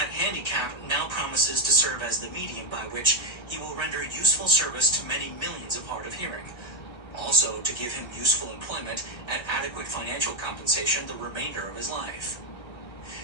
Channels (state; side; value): late; right; 1.3 ms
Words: handicap now promises to serve as the medium by which he will render useful service to many millions of hard of hearing, also to give him useful employment at adequate financial compensation the remainder of his life.